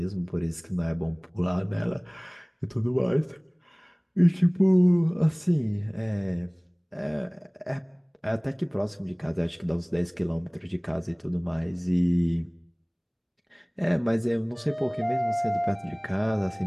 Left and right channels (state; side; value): identical; both; correlation 1.00